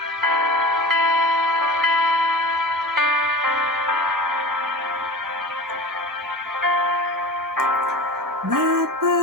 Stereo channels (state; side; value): normal; both; correlation 0.34